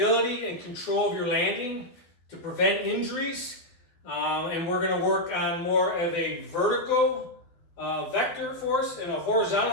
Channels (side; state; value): right; late; 12 ms